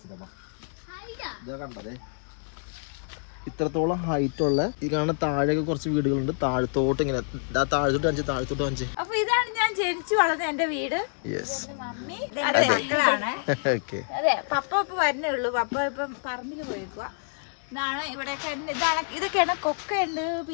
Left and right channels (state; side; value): silent; right; digital silence